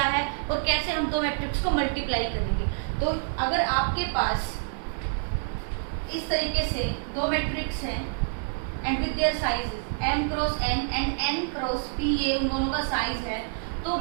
है और कैसे हम दो मैट्रिक्स को मल्टीप्लाई करेंगे। तो अगर आपके पास इस तरीके से दो मैट्रिक्स हैं and with their sizes m cross n and n cross p, ये उन दोनों का साइज है, तो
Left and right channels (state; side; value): silent; left; digital silence